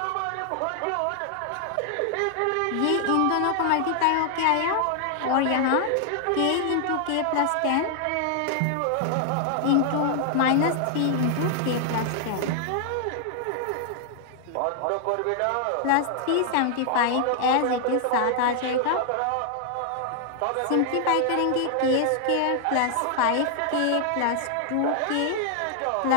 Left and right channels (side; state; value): both; different; correlation 0.00